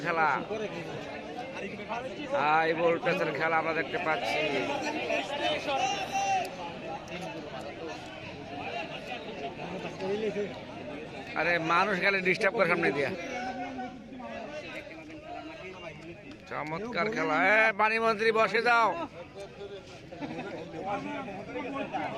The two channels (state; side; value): identical; both; correlation 1.00